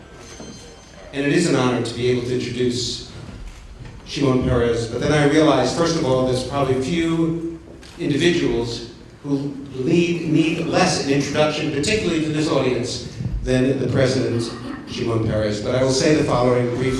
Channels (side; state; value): both; identical; correlation 1.00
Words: And it is an honor to be able to introduce Shimon Peres. But then I realized, first of all, there's probably a few individuals who need less an introduction, particularly to this audience, than the President, Shimon Peres. But I will say the following